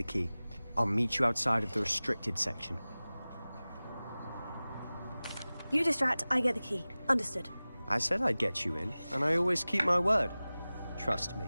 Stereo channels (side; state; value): both; inverted; correlation -0.98